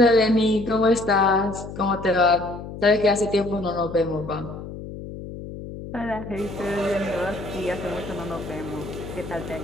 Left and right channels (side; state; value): left; noise; hum, 11 dB below the sound